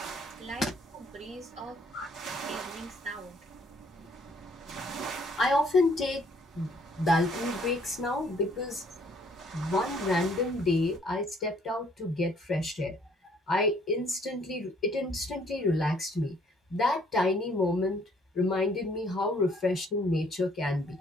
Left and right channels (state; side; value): normal; both; correlation 0.63